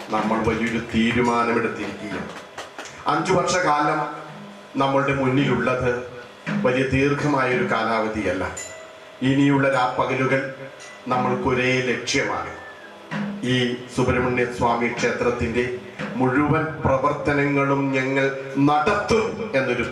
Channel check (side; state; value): both; identical; correlation 1.00